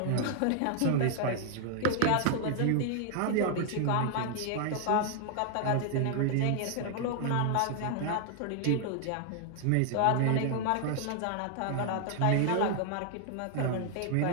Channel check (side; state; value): both; different; correlation 0.00